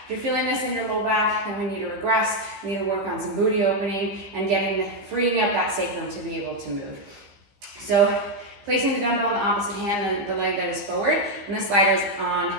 If you're feeling this in your low back, then we need to regress, we need to work on some booty opening and freeing up that sacrum to be able to move. So placing the dumbbell on the opposite hand, the leg that is forward, and the slider is on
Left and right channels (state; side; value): late; left; 15 ms